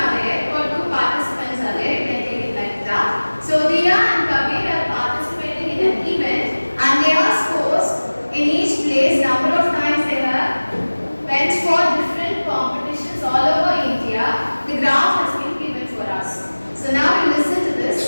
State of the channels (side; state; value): both; inverted; correlation -1.00